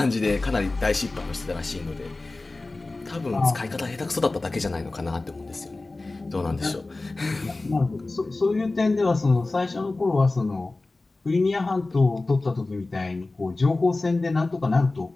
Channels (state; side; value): quieter; right; 3.2 dB